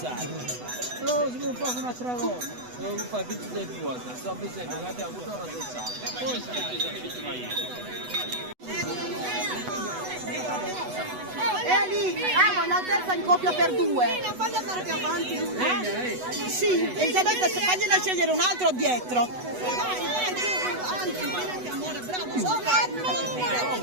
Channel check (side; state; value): left; late; 8.1 ms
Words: Però si può fare un'altra cosa, devo fare tutti dei due, sto bisogno che abbiamo avuto una processare. Poi si Lì, vuoi l'altezza in coppia per due? Fagli andare più avanti. Sì, Elisabetta, fagliela scegliere un altro dietro.